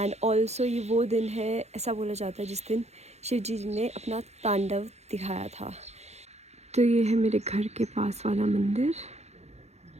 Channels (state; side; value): late; left; 0.32 ms